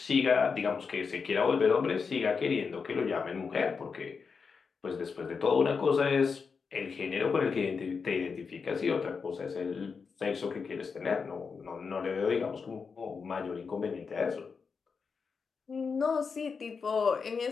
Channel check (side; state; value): right; quieter; 5.4 dB